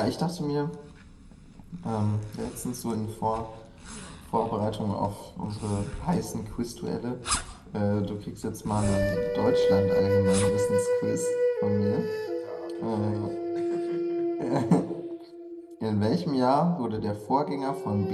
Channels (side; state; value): both; identical; correlation 1.00